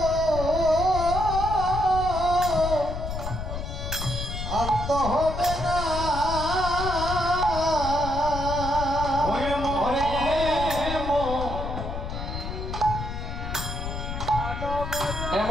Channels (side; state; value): left; noise; rumble, 5 dB below the sound